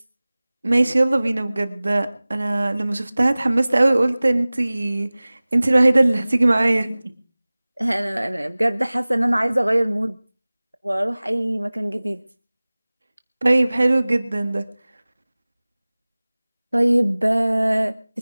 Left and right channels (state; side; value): inverted; both; correlation -0.99